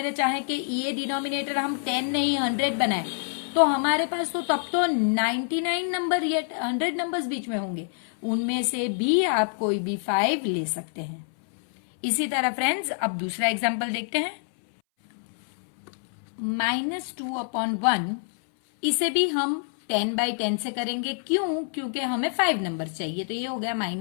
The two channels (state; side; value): silent; right; 61 dB below the other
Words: चाहे कि ये डिनोमिनेटर हम 10 नहीं 100 बनाए तो हमारे पास तो तब तो 99 नंबर या 100 नंबर्स बीच में होंगे, उनमें से भी आप कोई भी 5 ले सकते हैं। इसी तरह फ्रेंड्स अब दूसरा एग्जांपल देखते हैं। -2/1 इसे भी हम 10/10 से करेंगे, क्यों, क्योंकि हमें 5 नंबर चाहिए। तो ये हो गया